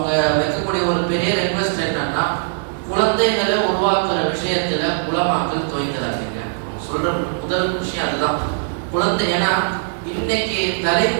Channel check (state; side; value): silent; left; digital silence